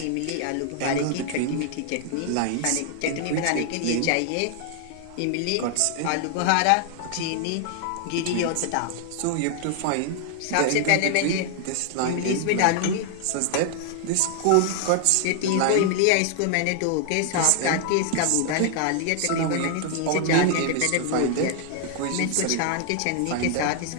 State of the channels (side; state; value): both; different; correlation 0.00